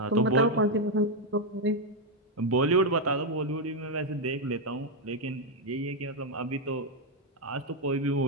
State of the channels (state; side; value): normal; both; correlation 0.03